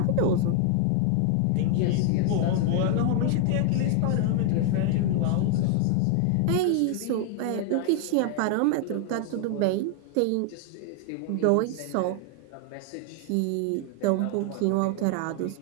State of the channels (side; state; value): both; different; correlation 0.00